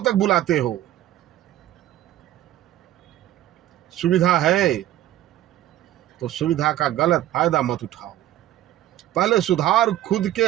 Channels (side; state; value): left; quieter; 13.6 dB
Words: तक बुलाते हो। सुविधा है तो सुविधा का गलत फायदा मत उठाओ। पहले सुधार खुद के